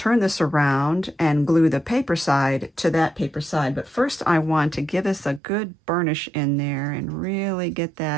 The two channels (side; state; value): left; drops out; at 5.4 s